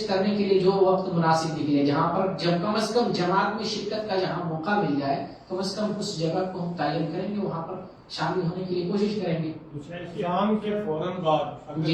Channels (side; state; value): both; identical; correlation 1.00